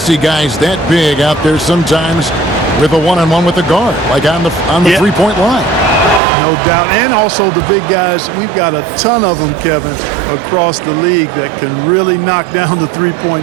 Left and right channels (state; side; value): drops out; left; at 6.2 s